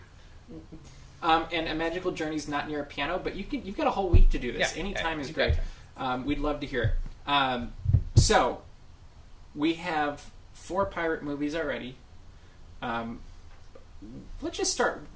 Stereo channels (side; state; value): both; identical; correlation 1.00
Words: And A Magical Journey's not near a piano, but you've got a whole week to do this. Yeah, Any time is you've great. got We'd love to hear it. So, we have 4 pirate movies already. Let's just start.